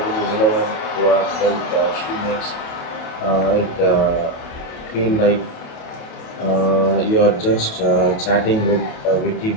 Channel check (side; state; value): right; late; 28 ms